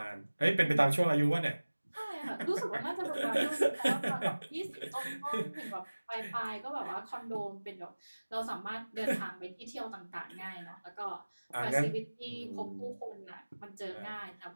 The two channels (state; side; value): inverted; both; correlation -1.00